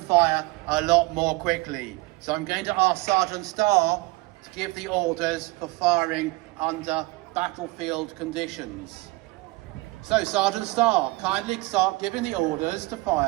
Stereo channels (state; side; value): quieter; left; 23.0 dB